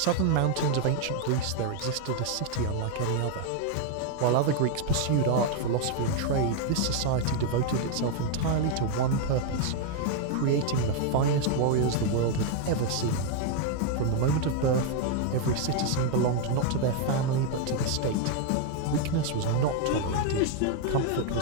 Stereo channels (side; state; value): both; different; correlation 0.01